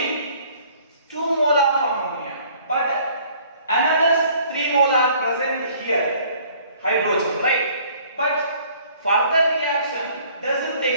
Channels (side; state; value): both; inverted; correlation -0.56